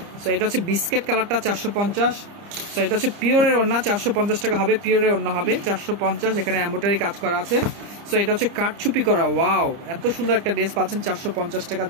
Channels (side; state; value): left; late; 30 ms